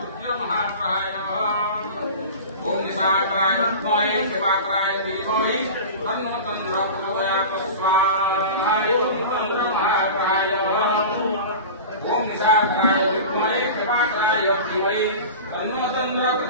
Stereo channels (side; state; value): both; inverted; correlation -0.33